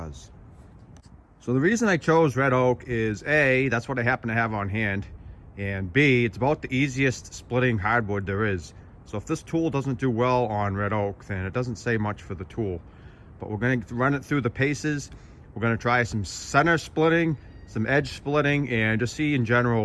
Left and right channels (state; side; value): identical; both; correlation 1.00